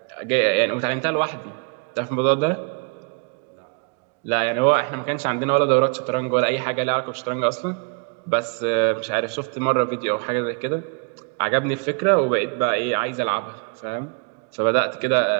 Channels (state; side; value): quieter; left; 34.8 dB